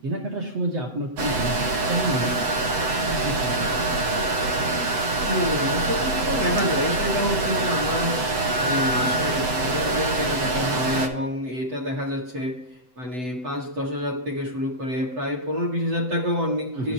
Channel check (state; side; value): late; left; 7.9 ms